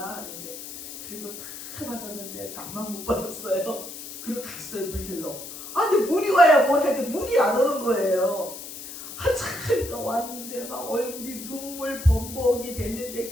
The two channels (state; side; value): noise; left; hiss, 11 dB below the sound